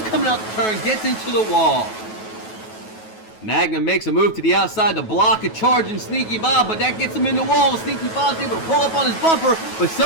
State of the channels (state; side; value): late; right; 9.3 ms